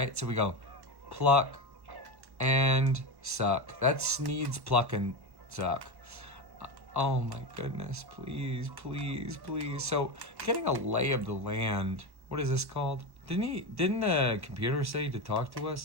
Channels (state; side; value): late; left; 1.1 ms